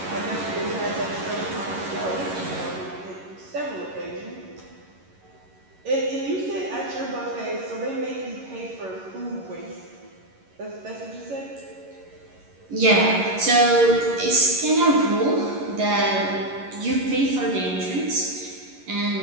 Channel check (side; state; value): left; late; 11 ms